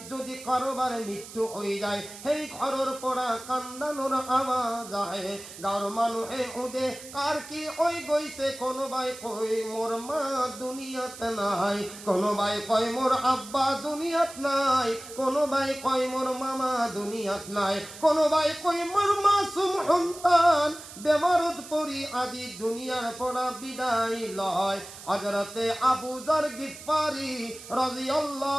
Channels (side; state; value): right; noise; hiss, 15 dB below the sound